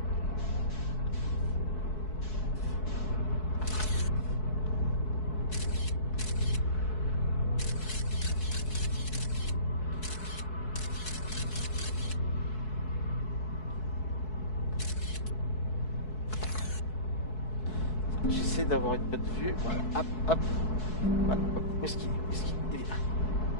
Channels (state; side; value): late; right; 4.7 ms